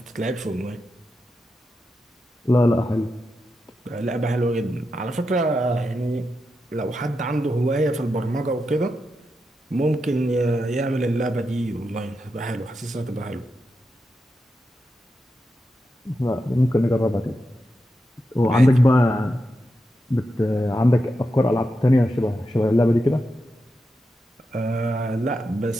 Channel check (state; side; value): normal; both; correlation 0.87